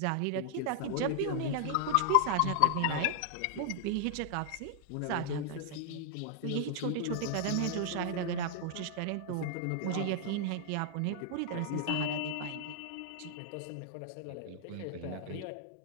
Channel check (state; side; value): different; both; correlation -0.01